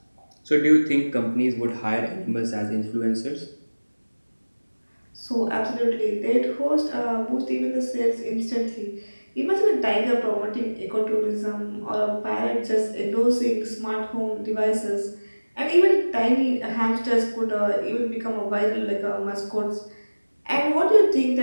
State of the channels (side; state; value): both; inverted; correlation -1.00